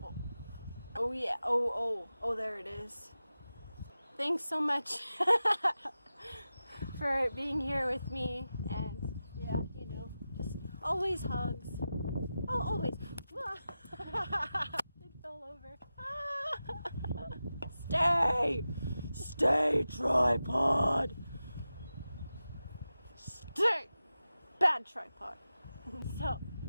Oh yeah, oh, there it is. Thanks so much for being here with me, and yeah, you know, just always hugs. Oh, always. It fell over. Stay, tripod. Stay, bad tripod. So,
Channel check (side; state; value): both; inverted; correlation -0.93